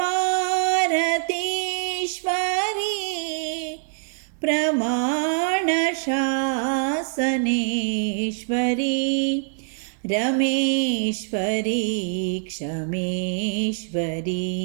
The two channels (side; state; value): left; silent; digital silence